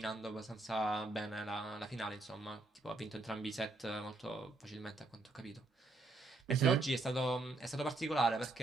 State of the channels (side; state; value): left; quieter; 3.1 dB